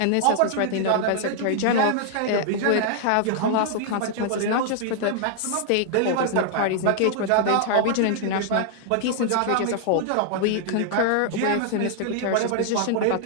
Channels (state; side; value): different; both; correlation -0.01